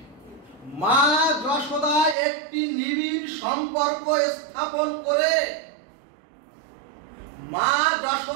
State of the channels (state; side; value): drops out; left; at 2.1 s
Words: মা যশোদা একটি নিবিড় সম্পর্ক স্থাপন করে মা